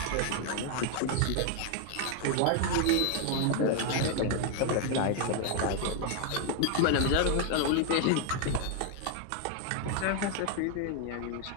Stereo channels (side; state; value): both; different; correlation 0.00